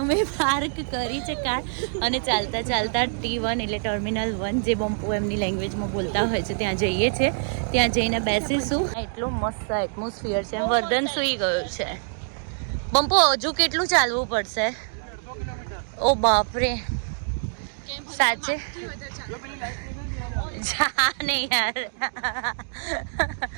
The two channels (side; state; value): left; silent; digital silence